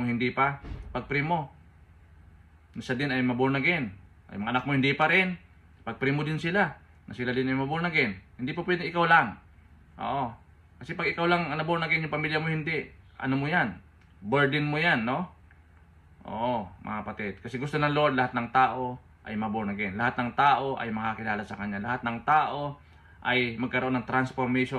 hindi pa, pag-pray mo. Siya din ay maborn again. Ay mga anak mo hindi pa rin, pag-pray mo din sila, na sila din ay maborn again. Hindi po pwede ikaw lang. Oo. Kasi pag ikaw lang ang naborn again, yung pamilya mo hindi, ano mo yan? Burden mo yan, no? Oo, mga kapatid. Kasi gusto ng Lord, lahat ng tao ay maborn again. Lahat ng tao ay makakilala sa Kanya. Lahat ng tao ay magkaroon ng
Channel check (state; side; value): identical; both; correlation 1.00